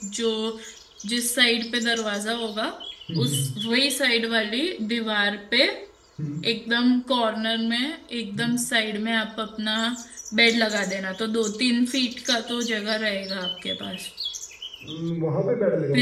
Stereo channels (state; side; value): identical; both; correlation 1.00